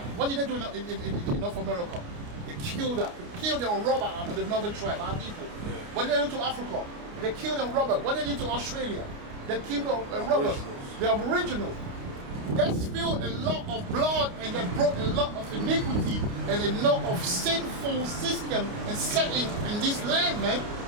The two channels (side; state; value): left; late; 29 ms